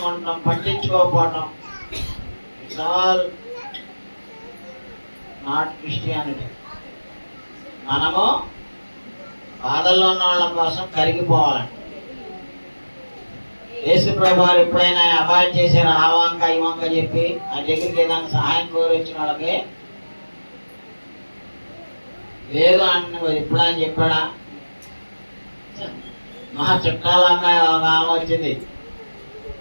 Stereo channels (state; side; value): inverted; both; correlation -1.00